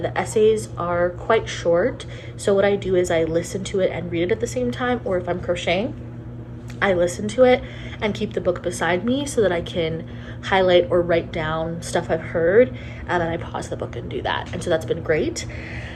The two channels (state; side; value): identical; both; correlation 1.00